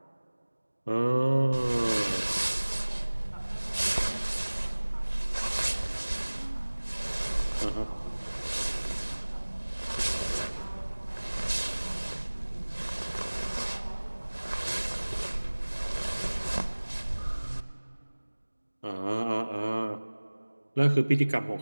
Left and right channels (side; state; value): both; inverted; correlation -1.00